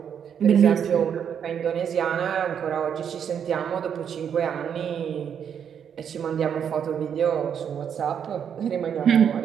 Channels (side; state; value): left; quieter; 8.1 dB